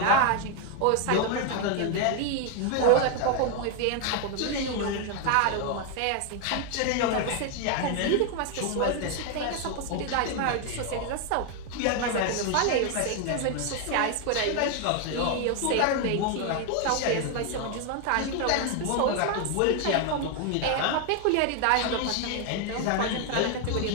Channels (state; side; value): different; both; correlation 0.01